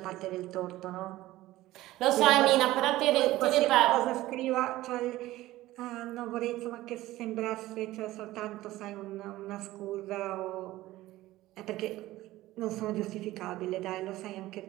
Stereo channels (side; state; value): left; quieter; 16.6 dB